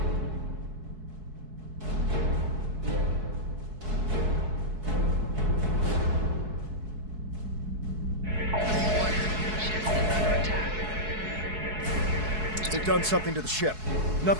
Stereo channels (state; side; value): late; left; 4.7 ms